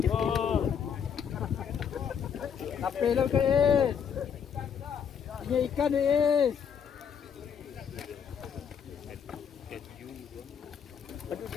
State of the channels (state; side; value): quieter; right; 7.5 dB